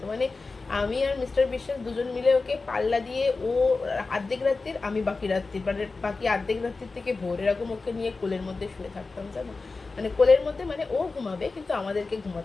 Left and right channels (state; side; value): quieter; right; 3.9 dB